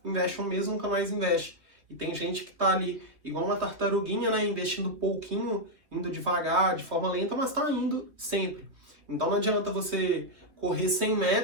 investe um mês, nunca mais investe. E tem gente que tá ali, igual uma tartaruguinha, né, investindo pouquinho, indo devagar, de forma lenta, mas tá indo sempre. Então não adianta você correr 100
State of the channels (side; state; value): left; late; 3.2 ms